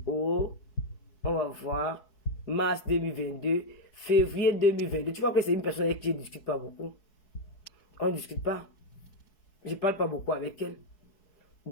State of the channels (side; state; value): right; late; 4.7 ms